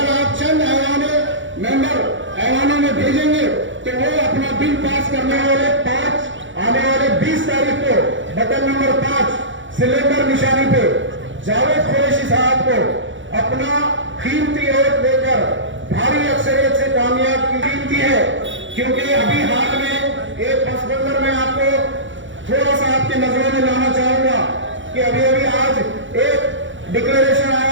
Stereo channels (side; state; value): left; late; 0.55 ms